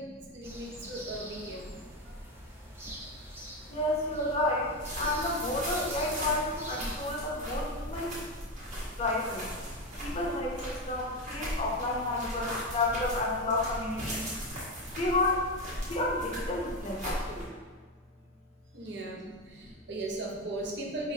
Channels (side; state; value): both; normal; correlation 0.14